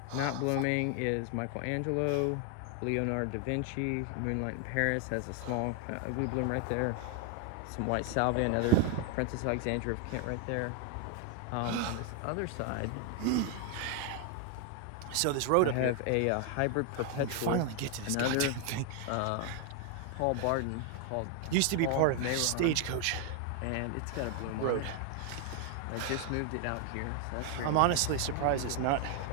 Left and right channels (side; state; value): both; different; correlation 0.00